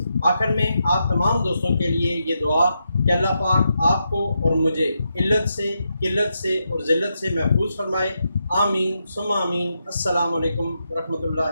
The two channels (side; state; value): both; inverted; correlation -0.84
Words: آخر میں آپ تمام دوستوں کے لیے یہ دعا کہ اللہ پاک آپ کو اور مجھے علت سے، قلت سے اور ذلت سے محفوظ فرمائے۔ آمین ثم آمین۔ السلام علیکم ورحمۃ